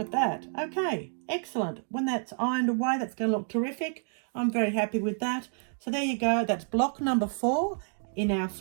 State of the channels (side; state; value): left; silent; 57 dB below the other